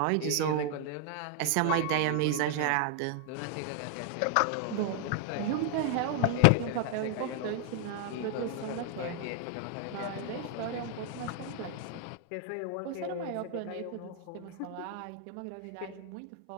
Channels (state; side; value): different; both; correlation 0.00